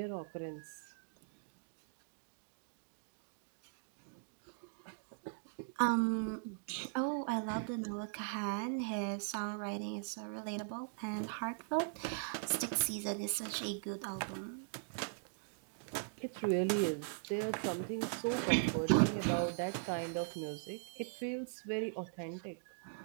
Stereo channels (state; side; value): silent; left; digital silence